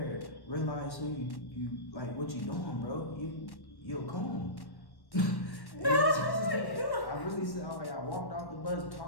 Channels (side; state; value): right; late; 1.1 ms